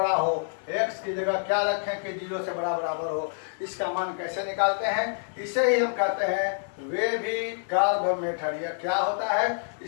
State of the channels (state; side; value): silent; right; 60 dB below the other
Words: हो, x की जगह क्या रखें कि 0 से बड़ा बराबर हो, इसका मान कैसे निकालते हैं, इसे ही हम कहते हैं वेविक कर्व मेथड। यह क्या होता है,